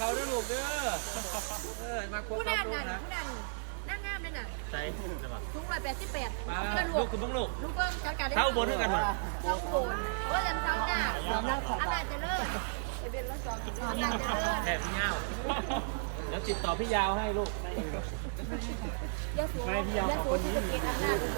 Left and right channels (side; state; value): left; silent; digital silence